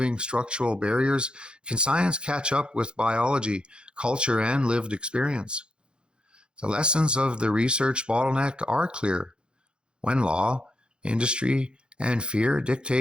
structural barriers can science catch up with biology, culture, and lived experience. The lessons of the research bottleneck are clear. When law, industry, and fear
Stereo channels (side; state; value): left; late; 0.052 ms